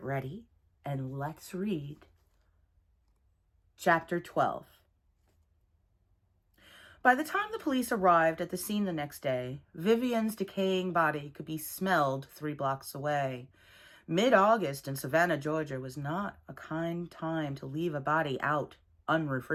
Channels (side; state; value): both; identical; correlation 1.00